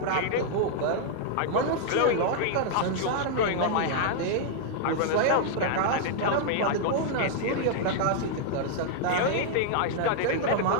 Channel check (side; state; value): both; different; correlation -0.01